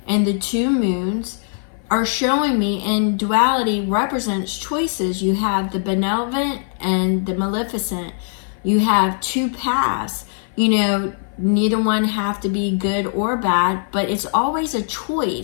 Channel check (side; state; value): right; silent; 57 dB below the other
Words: and the 2 moons are showing me, and duality represents choices. You have the benevolent and the maleficent. You have 2 paths. Neither one have to be good or bad, but it's always a